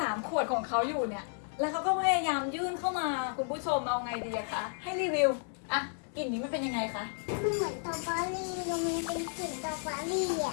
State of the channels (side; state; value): right; silent; 56 dB below the other